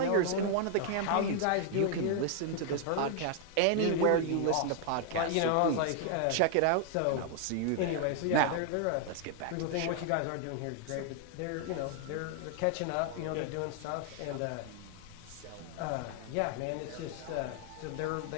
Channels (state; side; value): different; both; correlation 0.00